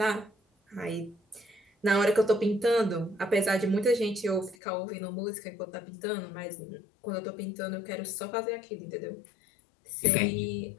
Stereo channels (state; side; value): drops out; right; at 4.5 s